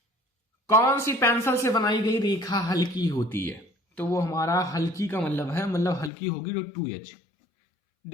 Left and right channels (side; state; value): right; drops out; at 6.1 s